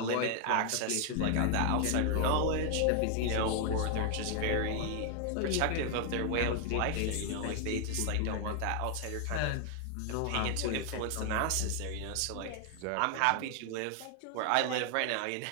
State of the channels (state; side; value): different; both; correlation 0.00